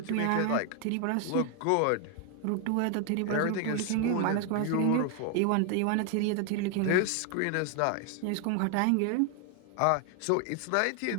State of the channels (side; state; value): both; different; correlation 0.01